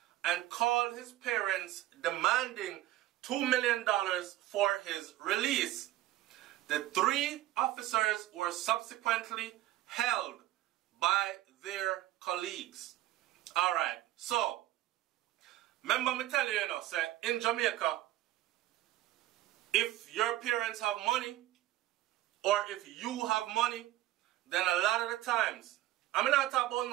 and called his parents demanding $2 million for his release. The 3 officers were subsequently held by their colleagues. Alright, so, remember me tell you, say, in Jamaica, if your parents have money, or if you have money, then a lot of the times, I'm not talking about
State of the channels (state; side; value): quieter; left; 15.0 dB